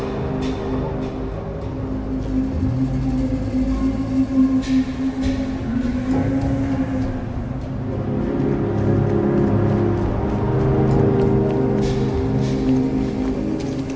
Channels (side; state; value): both; identical; correlation 1.00